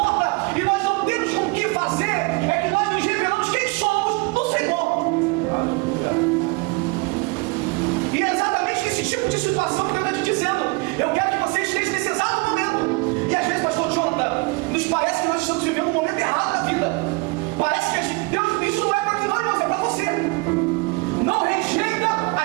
e nós não temos com o que fazer, é que nós nos revelamos quem somos no Senhor. E é exatamente esse tipo de situação que Deus está te dizendo. Eu quero que você esteja nesse exato momento. E às vezes, pastor Jonathan, nos parece que nós estamos vivendo um momento errado da vida. Parece que Deus, isso não é para mim, não, irmãos, é para você. Não rejeita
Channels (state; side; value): quieter; left; 27.5 dB